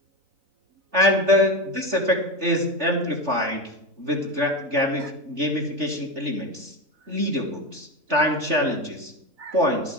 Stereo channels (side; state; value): left; late; 3.3 ms